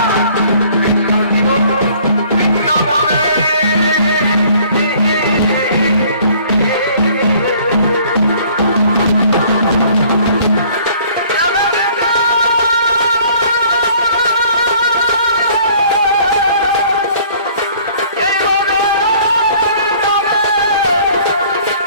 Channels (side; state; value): both; inverted; correlation -0.56